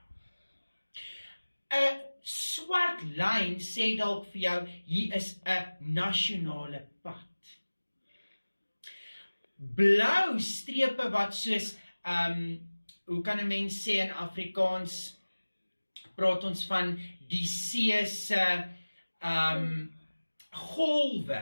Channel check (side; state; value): both; inverted; correlation -1.00